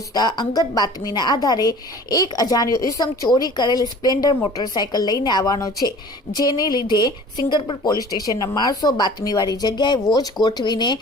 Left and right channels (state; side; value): normal; both; correlation 0.45